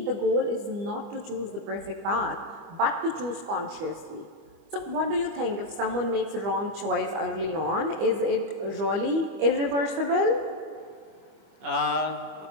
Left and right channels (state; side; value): late; left; 25 ms